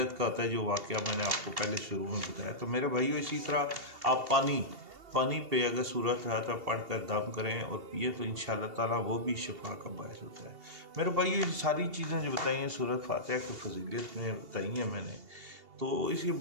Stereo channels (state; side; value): late; left; 2.8 ms